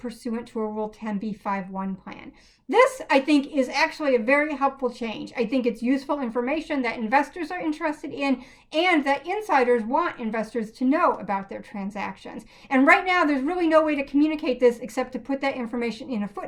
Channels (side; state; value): both; identical; correlation 1.00